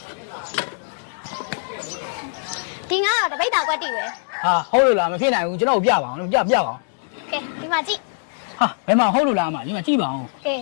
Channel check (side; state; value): right; silent; 64 dB below the other